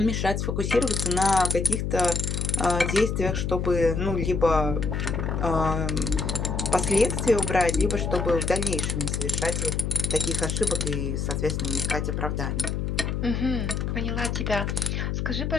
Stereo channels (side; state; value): left; noise; hum, 1 dB below the sound